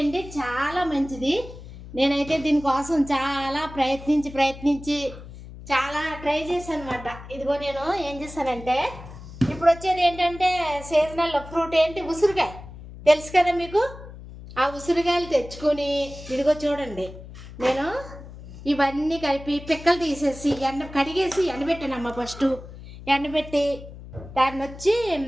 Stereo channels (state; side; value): noise; left; hum, 15 dB below the sound